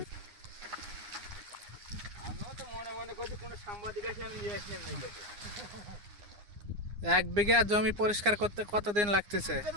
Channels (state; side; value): late; left; 9.7 ms